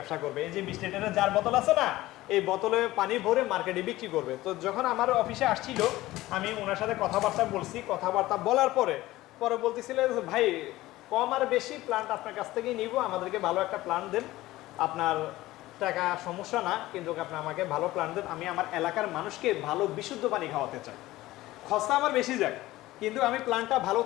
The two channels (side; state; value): right; quieter; 17.2 dB